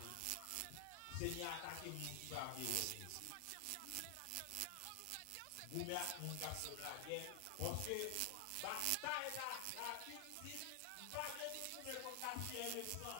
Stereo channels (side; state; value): both; different; correlation 0.00